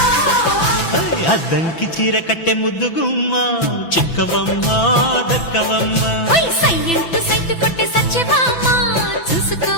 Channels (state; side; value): late; right; 6.0 ms